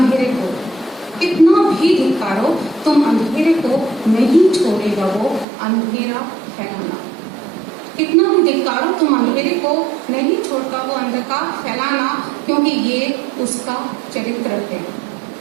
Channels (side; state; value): left; drops out; at 5.5 s